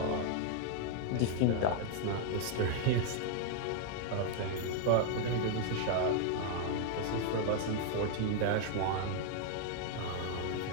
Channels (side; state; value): both; different; correlation 0.00